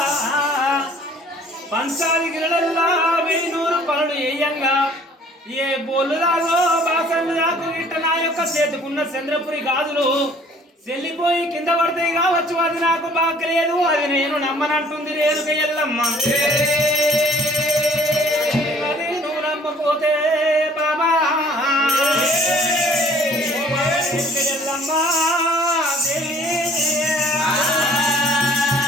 పంచాది గిరడల్లా 1000 పనులు వేయంగా ఏ బోలు రాగో బాసన్లు రాకు గిట్ట నా యొక్క చేతుకున్న చంద్రపురి గాజులు చెల్లిపోయి కింద పడతాయి కావచ్చు అది నాకు బాగలేదు అది నేను నమ్మనంటుంది రేణుక ఎల్లమ్మ అది నువ్వు నమ్మపోతే బాబా ఎల్లమ్మ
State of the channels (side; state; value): both; normal; correlation 0.55